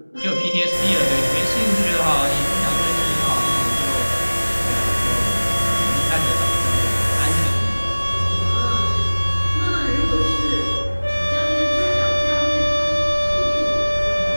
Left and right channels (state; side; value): inverted; both; correlation -1.00